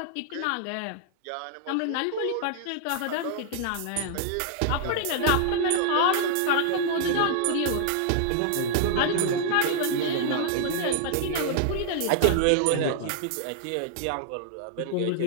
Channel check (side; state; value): both; different; correlation -0.01